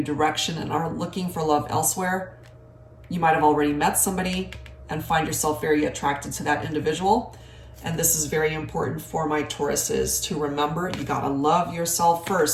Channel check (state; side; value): identical; both; correlation 1.00